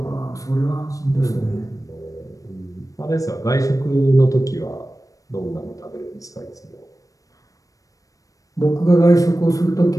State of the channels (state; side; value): late; right; 0.16 ms